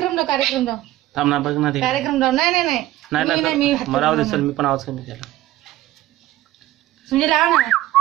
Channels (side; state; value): left; quieter; 15.6 dB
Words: लाव कार्यक्रम लाव थांब ना बघ ना ते कार्यक्रम लाव. नाही नाही नाही मी नाही मी मला राहू दे चल मी पण आवाज कमी केला. म्हणजे लाव ना.